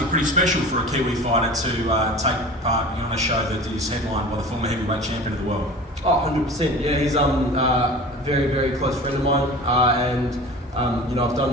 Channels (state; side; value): normal; both; correlation 0.38